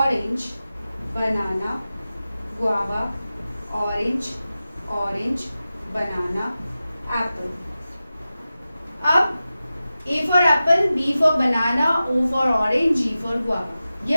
banana, guava, orange, banana, apple. अब A for apple, B for banana, O for orange, G for guava.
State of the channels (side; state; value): both; inverted; correlation -0.94